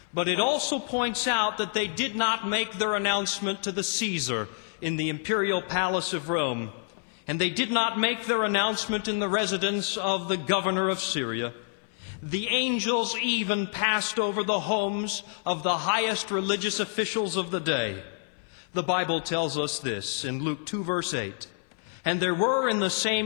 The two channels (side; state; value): right; silent; 59 dB below the other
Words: But it also points out that they did not make their announcement to the Caesar in the imperial palace of Rome, and they did not make their announcement in the residence of the governor of Syria. The angels even passed over the homes of the highest religious officials of the day. The Bible tells us this in Luke 2, verse 8. And there were in the